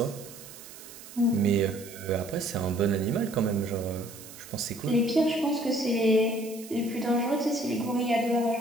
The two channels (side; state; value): right; noise; hiss, 16 dB below the sound